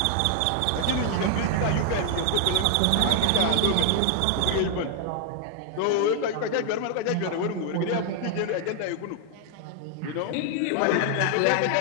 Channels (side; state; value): both; different; correlation 0.00